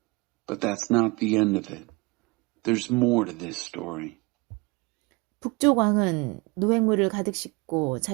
But that's not the end of it. There's more to this story. 북쪽 왕은 노획물을 가득 싣고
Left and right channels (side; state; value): left; quieter; 26.0 dB